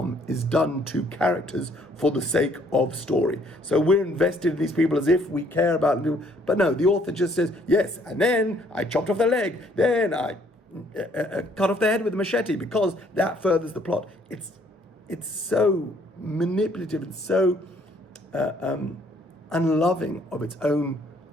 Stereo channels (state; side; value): normal; both; correlation 0.64